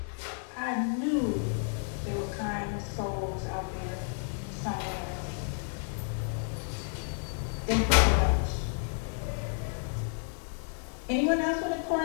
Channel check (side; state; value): right; silent; 57 dB below the other